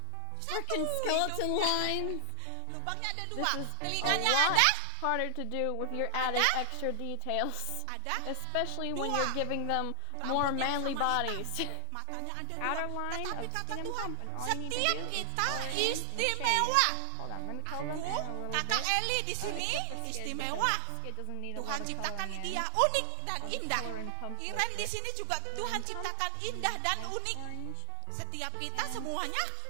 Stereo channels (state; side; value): different; both; correlation 0.00